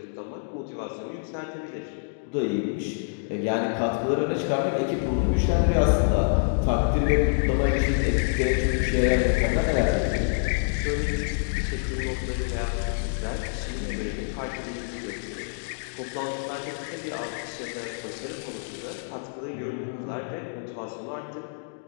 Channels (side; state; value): right; silent; digital silence